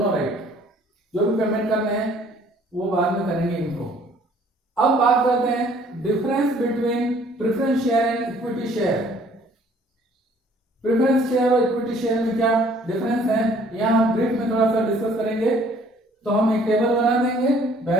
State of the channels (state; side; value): normal; both; correlation 0.58